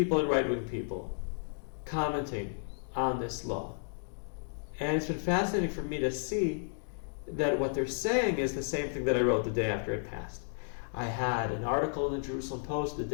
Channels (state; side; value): silent; right; digital silence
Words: and right-wing people commenting on this law. And it's been fascinating for me to see that what they're saying is the same thing that I wrote the day after it passed. I had an article in the Jerusalem Post the